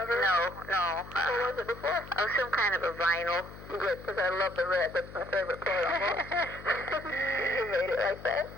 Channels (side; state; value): left; noise; hum, 16 dB below the sound